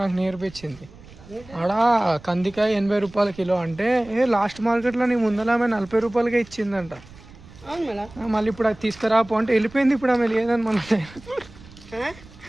నాకు నేర్పించింది. ఆడ కందికాయ 80 రూపాయల కిలో అంటే లాస్ట్ మార్కెట్లో నీ ముందర ఆమె 40 రూపాయలకే ఇచ్చిందంట. మళ్ళీ ఇప్పుడు అది తీసుకురాపో అంటే వెళ్ళిపోయింది. ఇప్పుడు ఆమె లేదని మన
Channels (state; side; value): noise; right; rumble, 21 dB below the sound